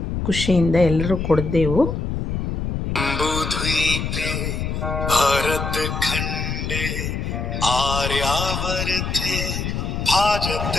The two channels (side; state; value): left; noise; rumble, 3 dB below the sound